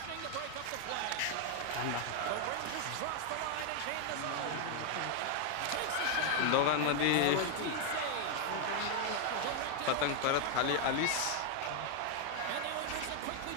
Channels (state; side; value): different; both; correlation 0.00